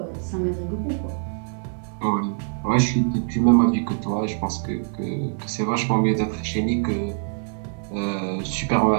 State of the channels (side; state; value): left; silent; 63 dB below the other